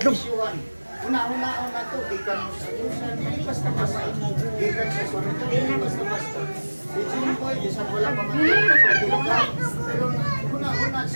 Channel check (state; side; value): inverted; both; correlation -1.00